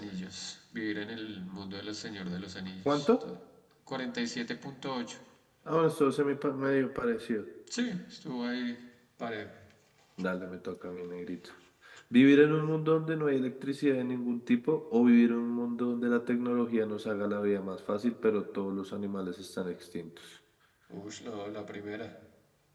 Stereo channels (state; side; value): identical; both; correlation 1.00